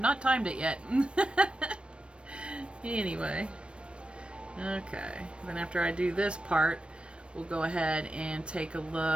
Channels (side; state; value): left; late; 0.058 ms